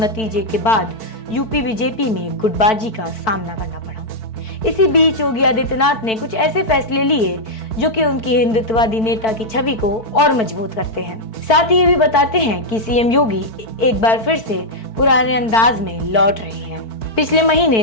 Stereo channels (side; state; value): right; late; 4.5 ms